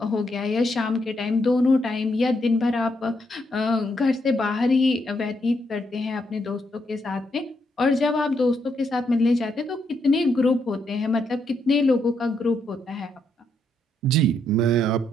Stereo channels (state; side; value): normal; both; correlation 0.77